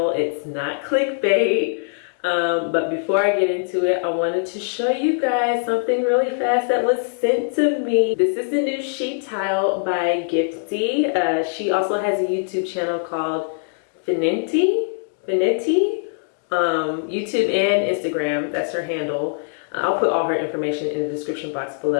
It's not clickbait. But before I get into it, I wanted to show you guys something really fast that was sent to me. This is the new sheet tile by Gifty. She also has a YouTube channel called FENETI, YouTube and Instagram. That's her handle. I'll put all her information in the description box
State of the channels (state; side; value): silent; right; digital silence